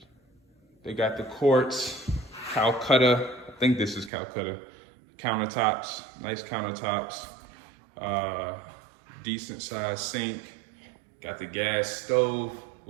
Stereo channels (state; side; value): drops out; left; at 4.1 s